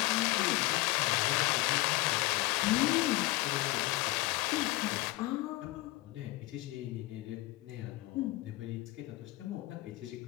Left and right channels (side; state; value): right; quieter; 20.3 dB